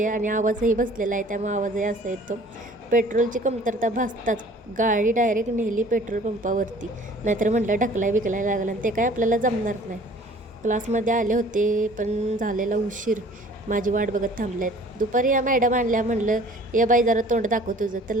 आणि आवाजही बसलेला आहे, त्यामुळे आवाजही असा येतो. पेट्रोलची कमतरता भासताच गाडी डायरेक्ट नेली पेट्रोल पंपावरती. नाहीतर म्हटलं ढकलाय बिकलाय लागलं आणि ते काय आपल्याला जमणार नाही. क्लासमध्ये आले होते पण झालेला उशीर. माझी वाट बघत थांबल्यात. दुपारी या मॅडम आणल्या, म्हणलं ये बाई जरा तोंड दाखव तुझं. तर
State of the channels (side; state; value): both; normal; correlation 0.51